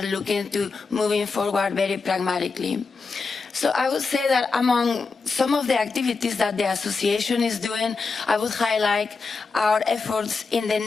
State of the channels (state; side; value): quieter; right; 4.5 dB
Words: looking to moving forward very pragmatically. So I would say that among some of the activities that the association is doing, I would highlight our efforts in the